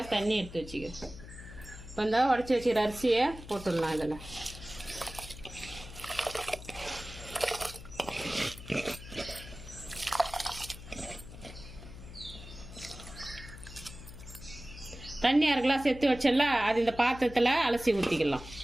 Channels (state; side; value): noise; left; hum, 14 dB below the sound